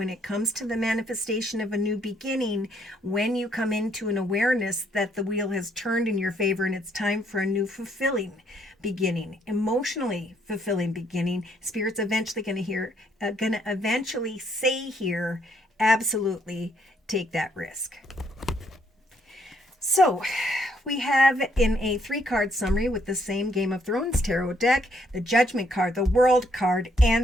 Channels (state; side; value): normal; both; correlation 0.70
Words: it comes to the manifestation of a new beginning, when you come into an awareness that the wheel has turned in your favor and it's time for a new fulfilling beginning, emotionally fulfilling beginning, Spirit's eventually going to eventually say here, absolutely take that risk. So we have in a 3-card summary with the same Game of Thrones tarot deck, the Judgment card, the World card,